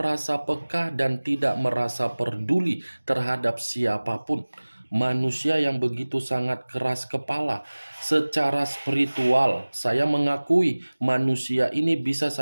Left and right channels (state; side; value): inverted; both; correlation -1.00